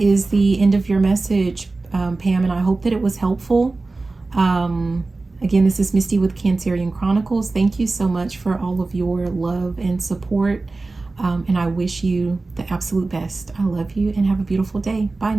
is the end of your message, Pam, and I hope that it was helpful. Again, this is Misty with Cancerian Chronicles. Thank you so much for all of your love and support. And I wish you the absolute best. I love you and have a beautiful day. Bye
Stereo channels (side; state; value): left; quieter; 3.5 dB